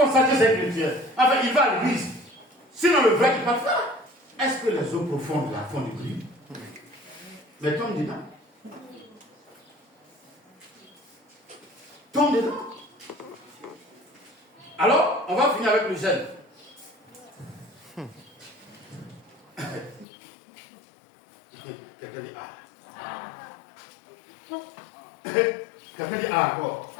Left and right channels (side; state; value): right; drops out; at 20.1 s